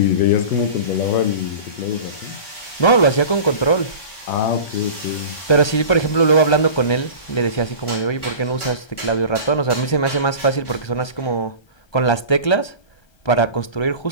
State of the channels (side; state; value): right; late; 1.3 ms